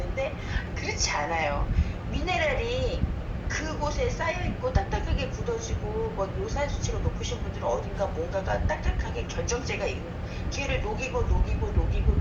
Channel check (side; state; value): both; identical; correlation 1.00